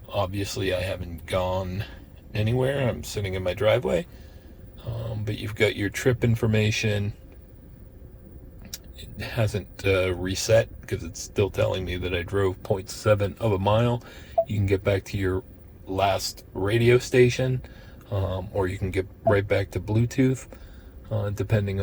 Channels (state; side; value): identical; both; correlation 1.00